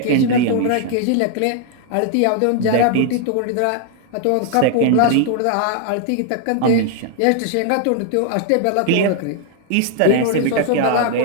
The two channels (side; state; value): both; different; correlation 0.00